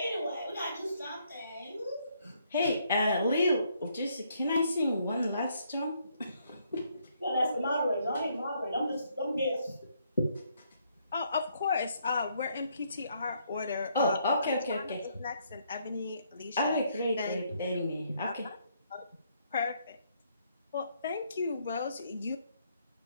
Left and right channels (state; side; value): inverted; both; correlation -0.71